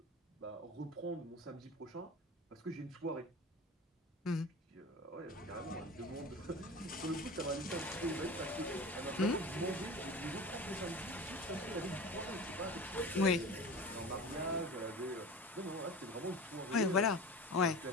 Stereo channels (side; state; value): both; normal; correlation 0.34